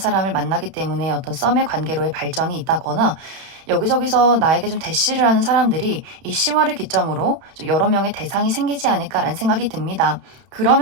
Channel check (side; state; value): left; late; 31 ms